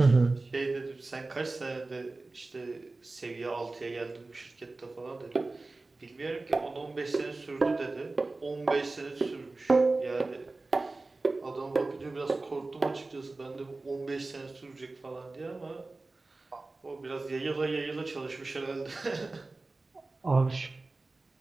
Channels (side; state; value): left; quieter; 3.3 dB